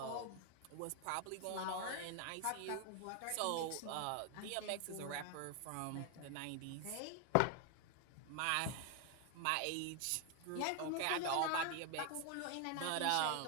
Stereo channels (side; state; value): both; different; correlation 0.01